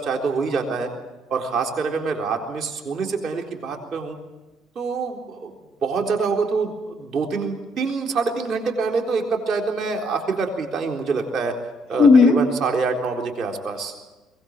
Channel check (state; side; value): normal; both; correlation 0.69